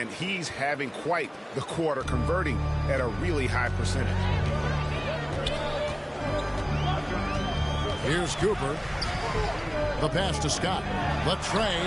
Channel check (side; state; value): both; identical; correlation 1.00